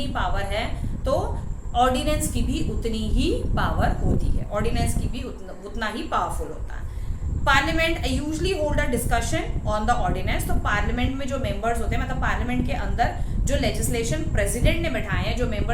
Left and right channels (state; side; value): identical; both; correlation 1.00